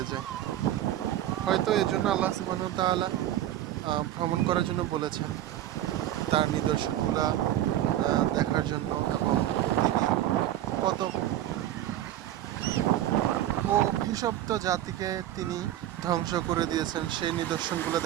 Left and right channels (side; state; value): left; quieter; 12.8 dB